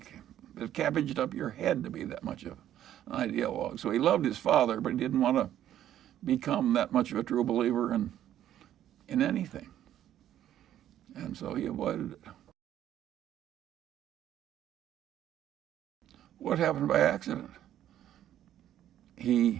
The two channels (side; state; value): left; quieter; 11.6 dB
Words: It cabbaged up your head to be that much of an ideologue. So he loved his father, but he didn't want to become that much of a true believer in anything. And so he avoided it. What happened by accident?